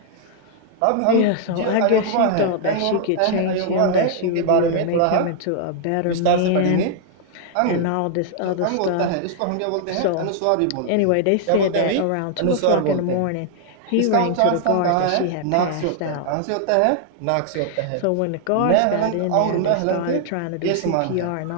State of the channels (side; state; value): both; different; correlation 0.00